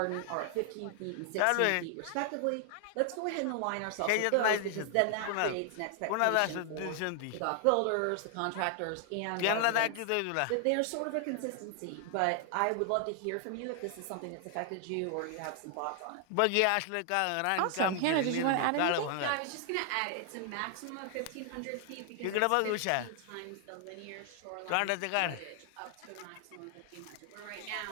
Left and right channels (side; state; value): both; different; correlation 0.00